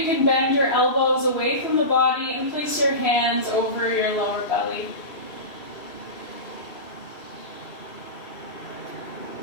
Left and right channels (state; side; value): late; right; 3.1 ms